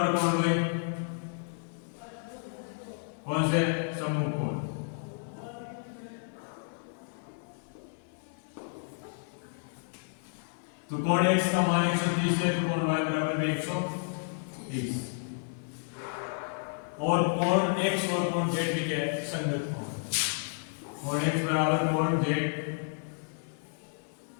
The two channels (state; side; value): silent; right; digital silence